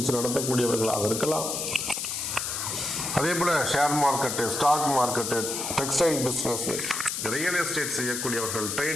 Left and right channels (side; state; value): left; noise; hiss, 3 dB below the sound